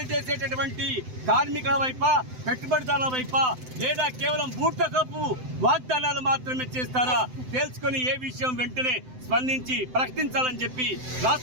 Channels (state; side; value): late; left; 7.8 ms